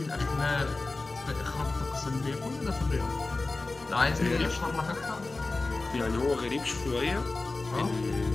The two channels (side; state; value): right; quieter; 3.4 dB